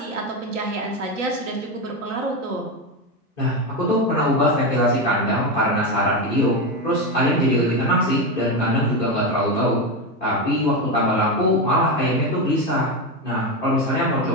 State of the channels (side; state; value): both; normal; correlation 0.13